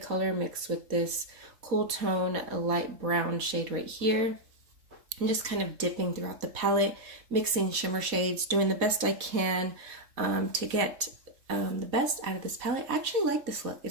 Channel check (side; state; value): left; late; 4.1 ms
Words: mixed with this cool tone, a light brown shade right here. I'm just kind of dipping throughout the palette, mixing shimmer shades, doing the best I can to get the best out of this palette. I actually like this look.